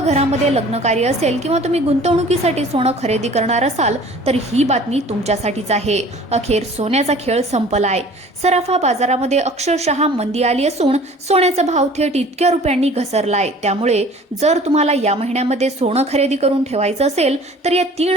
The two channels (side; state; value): both; normal; correlation 0.48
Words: घरामध्ये लग्न कार्य असेल किंवा तुम्ही गुंतवणुकीसाठी सोनं खरेदी करणार असाल तर ही बातमी तुमच्यासाठीच आहे। अखेर सोन्याचा खेळ संपलाय। सराफा बाजारामध्ये अक्षरशः मंदी आली असून सोन्याचा भाव थेट इतक्या रुपयांनी घसरलाय। त्यामुळे जर तुम्हाला या महिन्यामध्ये सोनं खरेदी करून ठेवायचं असेल तर या